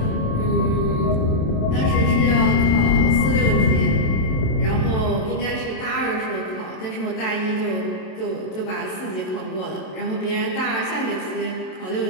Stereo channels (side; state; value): right; late; 27 ms